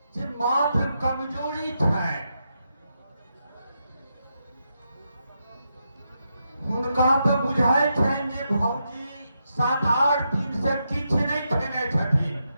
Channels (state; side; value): inverted; both; correlation -0.83